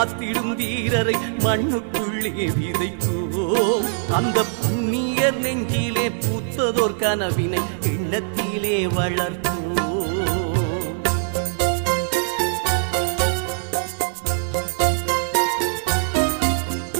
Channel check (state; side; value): silent; left; 64 dB below the other